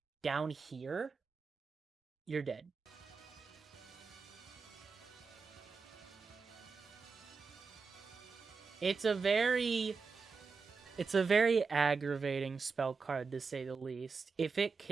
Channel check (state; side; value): quieter; left; 4.9 dB